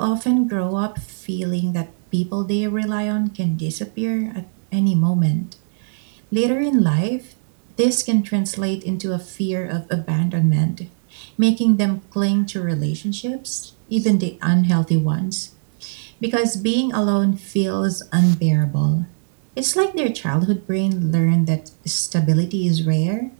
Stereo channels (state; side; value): silent; left; digital silence